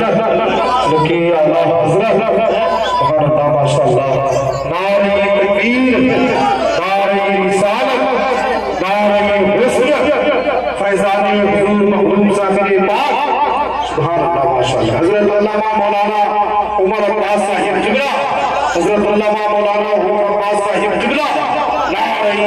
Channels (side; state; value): both; identical; correlation 1.00